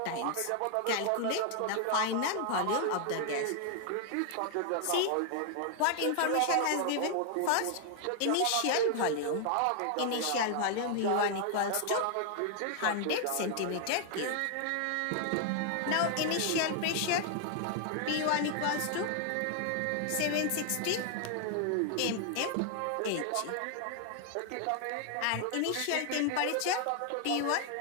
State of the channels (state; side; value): different; both; correlation 0.00